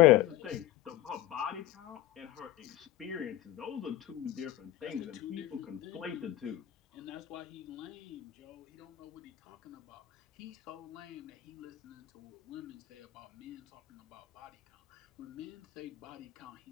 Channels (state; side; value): quieter; right; 14.6 dB